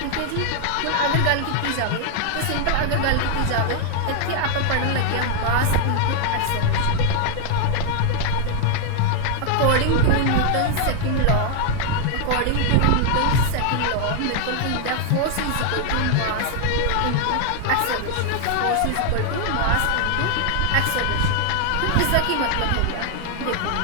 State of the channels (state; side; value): different; both; correlation 0.00